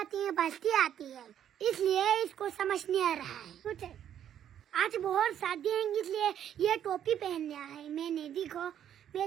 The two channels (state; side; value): quieter; left; 10.0 dB